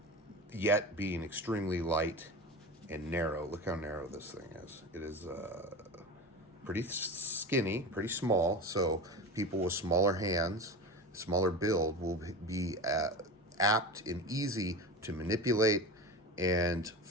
Yet being extremely light and narrow. Look how narrow this thing is. It is pretty skinny, pretty small. So people with smaller hands, smaller build will be apt and easy to manipulate and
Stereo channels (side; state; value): both; normal; correlation 0.29